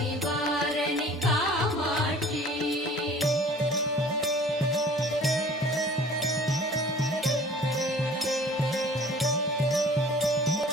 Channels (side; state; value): both; normal; correlation 0.48